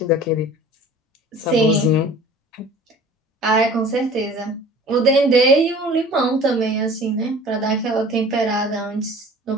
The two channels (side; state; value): both; normal; correlation 0.45